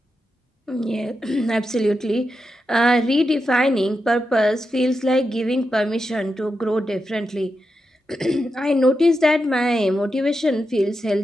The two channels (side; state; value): both; normal; correlation 0.87